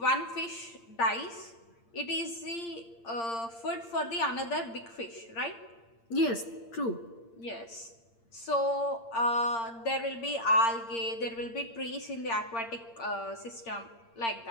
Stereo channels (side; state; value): right; late; 8.7 ms